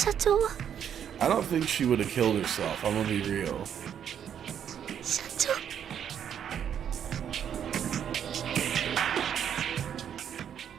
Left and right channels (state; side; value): quieter; left; 8.9 dB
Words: 長は。 I don't think she would have killed herself. I'm gonna be real. 社長。